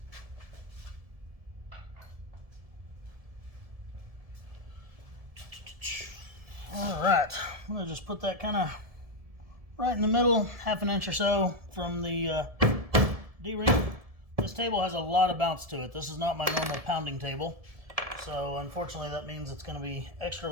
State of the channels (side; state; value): left; late; 1.7 ms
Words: Alright, I'm going to just put that kind of right in the middle, ½ inch or so from the D-ring. This table has a lot of bounce to it. This is not my normal pounding table. So unfortunately that means it's going to be extra